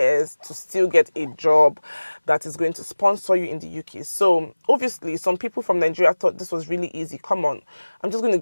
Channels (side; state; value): both; inverted; correlation -1.00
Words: to still get a job that is going to sponsor you in the UK. So obviously, some people from Nigeria thought this was really easy. Come on, I'm just going to